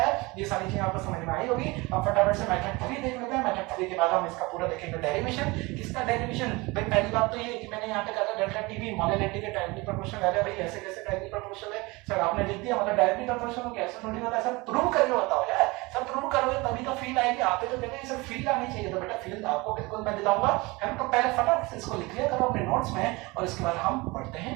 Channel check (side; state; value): left; quieter; 23.9 dB